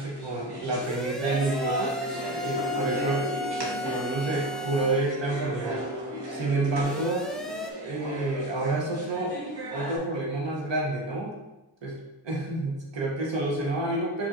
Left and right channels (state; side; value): normal; both; correlation 0.24